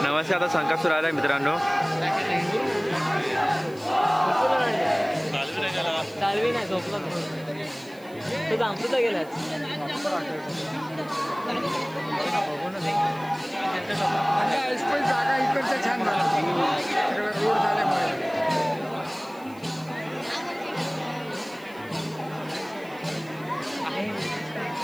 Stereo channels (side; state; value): right; noise; hiss, 25 dB below the sound